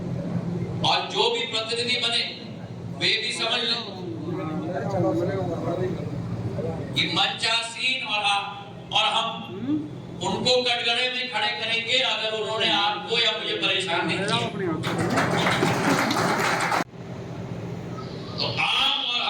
और जो भी प्रतिनिधि बने वे भी समझ लें कि मंचासीन और हम उनको कटघरे में खड़े करेंगे अगर उन्होंने आपको या मुझे परेशान नहीं किया। तो आप और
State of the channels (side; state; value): both; identical; correlation 1.00